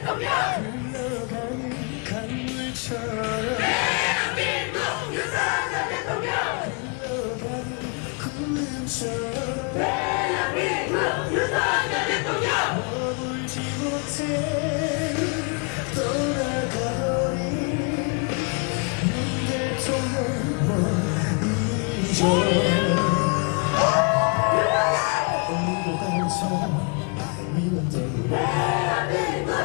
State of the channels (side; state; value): right; quieter; 36.4 dB